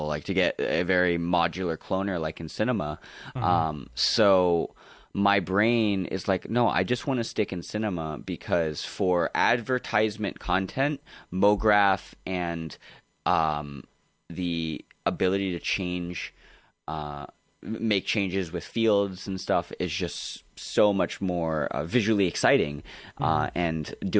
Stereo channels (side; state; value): both; identical; correlation 1.00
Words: like to get a very modular cloner like in Cinema. So... my brain is like, no, I just want to stick in Cinema, because for advertisement content, Mograph and the ability to make changes with fields and stuff is just so much more visually exciting. And